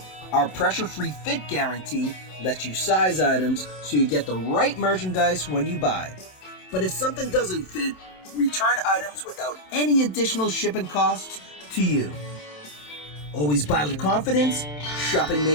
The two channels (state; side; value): late; right; 27 ms